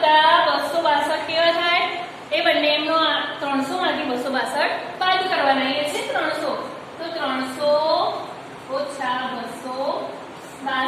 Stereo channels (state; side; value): identical; both; correlation 1.00